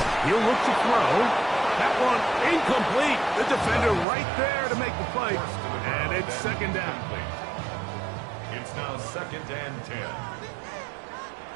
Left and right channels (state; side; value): drops out; left; at 4.0 s